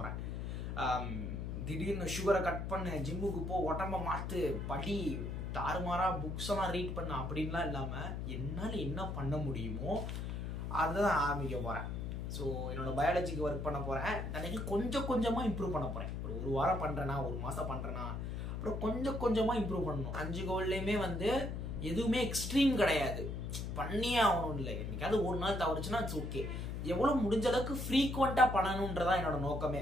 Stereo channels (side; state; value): left; noise; hum, 4 dB below the sound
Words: திடீர்னு சுகரை கட் பண்ணு, ஜிம்முக்கு போ, உடம்ப மாத்து, படி, தாறுமாறா புக்ஸ் எல்லாம் ரீட் பண்ண அப்படின்லாம் இல்லாம என்னால் என்ன பண்ண முடியுமோ அதுதான் ஆரம்பிக்க போறேன். ஸோ என்னோட பயாலஜிக்கு ஒர்க் பண்ண போறேன். எனக்கு கொஞ்சம் கொஞ்சமா இம்ப்ரூவ் பண்ண போறேன். ஒரு வாரம் பண்றேன்னா, ஒரு மாசம் பண்றேன்னா, அப்புறம் கொஞ்சம் கொஞ்சமா இம்ப்ரூவ் பண்ணணும். 5 கோல்லையுமே எதுவுமே எக்ஸ்ட்ரீம் கிடையாது, பண்ணியே ஆகணும். இல்லை, என்னைக்காவது ஒரு நாள் தவறுச்சுன்னா இட்ஸ் ஓகே. எவ்வளவு முடிஞ்ச அளவுக்கு ஃப்ரீக்வெண்டா பண்ணணும்ன்றதான் என்னோட